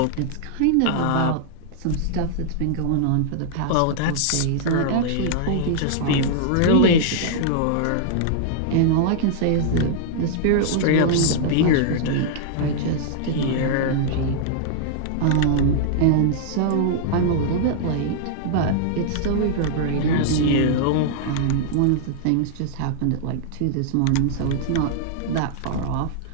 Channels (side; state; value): both; different; correlation -0.01